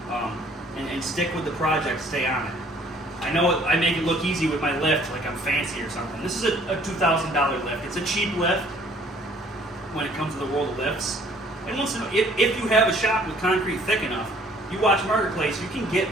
and stick with the project, stay on it. I know I make it look easy with my lift, like I'm fancy or something. This is a $2,000 lift. It's a cheap lift when it comes to the world of lifts. And once in a, if you have a shop with concrete thick enough, you watch Marketplace, you can get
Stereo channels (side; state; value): both; normal; correlation 0.58